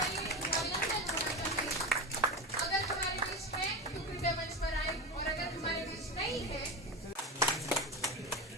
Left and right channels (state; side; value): normal; both; correlation 0.21